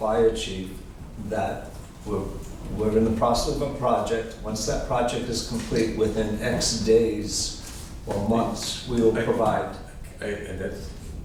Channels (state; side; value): identical; both; correlation 1.00